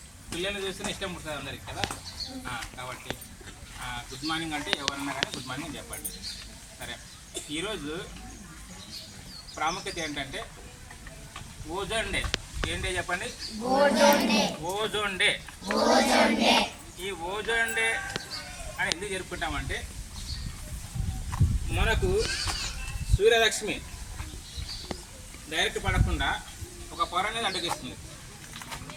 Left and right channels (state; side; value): identical; both; correlation 1.00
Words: పిల్లల్ని చూస్తేనే ఇష్టం పుడుతుంది అందరికి కదా. కాబట్టి గుడ్ మార్నింగ్ అంటే ఎవరన్నా కానీ గుడ్ మార్నింగ్ చెప్పండి. సరే, ఈరోజు ప్రాముఖ్యత ఏంటంటే ఓజోన్ డే. ఏం డే చెప్పండి? Ozone day. ఈ ఓజోన్ డే అని ఎందుకు జరుపుకుంటామంటే మనకు సూర్యరశ్మి డైరెక్ట్ పడకుండా ఒక పొర అనేది అడ్డగిస్తుంది.